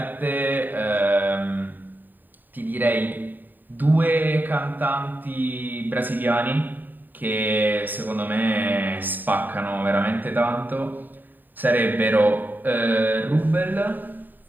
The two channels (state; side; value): late; left; 0.089 ms